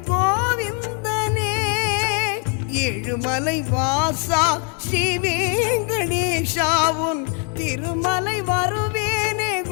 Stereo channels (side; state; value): right; quieter; 39.8 dB